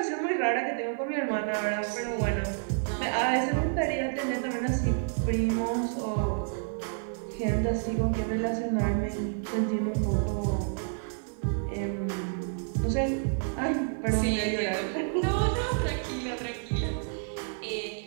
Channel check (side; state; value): left; silent; digital silence